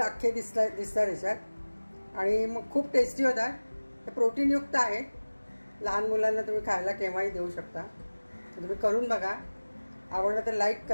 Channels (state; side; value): inverted; both; correlation -1.00